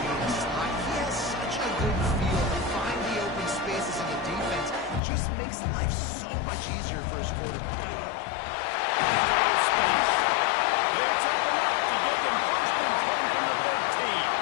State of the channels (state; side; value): drops out; right; at 5.0 s